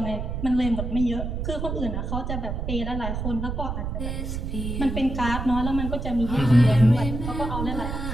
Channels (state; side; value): noise; right; rumble, 4 dB below the sound